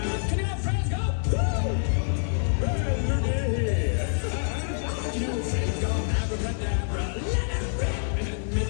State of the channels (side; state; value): right; silent; digital silence